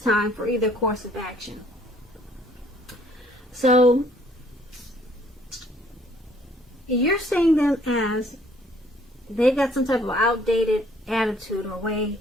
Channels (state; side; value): normal; both; correlation 0.61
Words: time for either course of action. So you're seeing them as they've got some type of outdated attitude or way